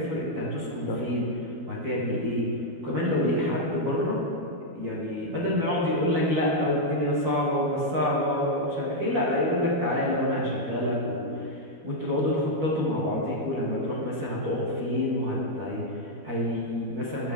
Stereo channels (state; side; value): late; left; 12 ms